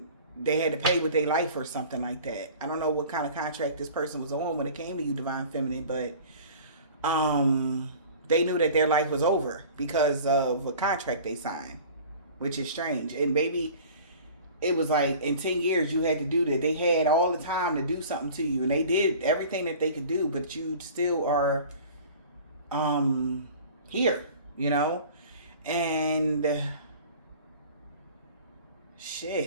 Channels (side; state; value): both; inverted; correlation -0.43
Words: they had to pay with their life or something like that. I don't know what kind of contract this person was on when it came to you, Divine Feminine, but they knew that their life was over because of a contract they signed, which is strange. And maybe it was like in 10 years you had to do that. They had all the time to do something to you, and they did everything that they could do, but you still are here, you know. And